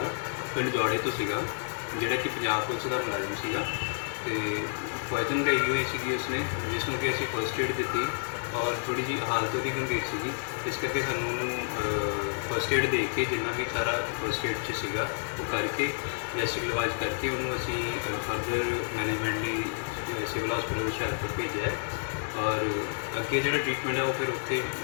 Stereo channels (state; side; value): silent; right; digital silence